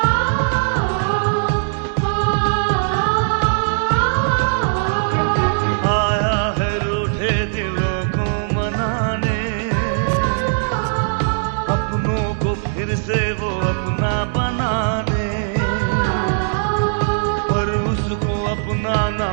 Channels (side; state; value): left; silent; digital silence